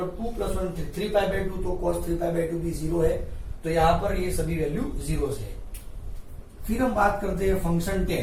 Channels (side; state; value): both; identical; correlation 1.00